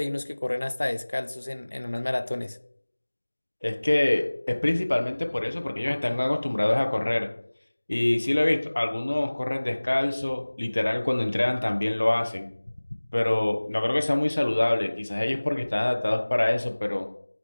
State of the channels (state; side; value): inverted; both; correlation -1.00